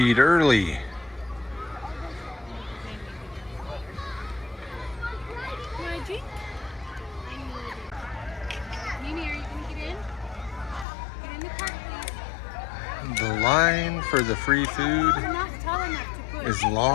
early. The line for the free food is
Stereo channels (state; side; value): drops out; right; at 10.9 s